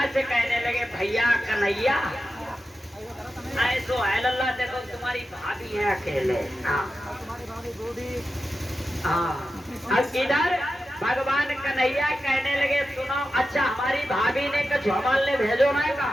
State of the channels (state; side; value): normal; both; correlation 0.92